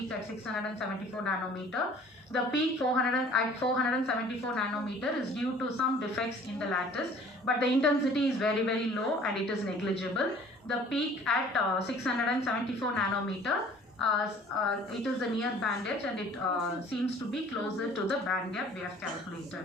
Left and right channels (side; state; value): both; normal; correlation 0.51